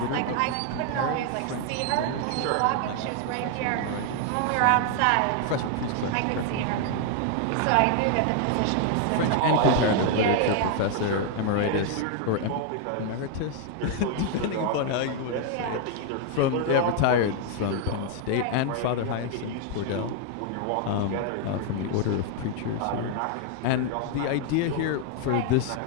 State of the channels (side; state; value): both; different; correlation 0.00